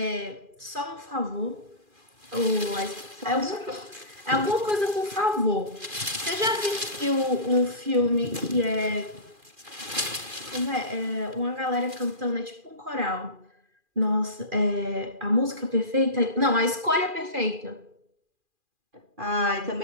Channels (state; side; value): late; left; 2.4 ms